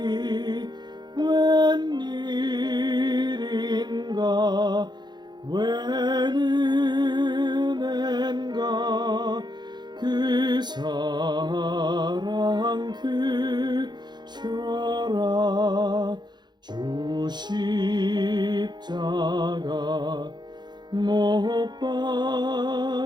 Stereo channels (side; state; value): left; late; 0.21 ms